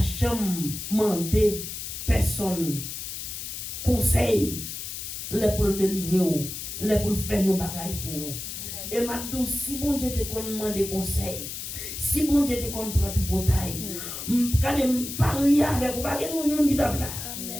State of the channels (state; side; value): noise; left; hiss, 7 dB below the sound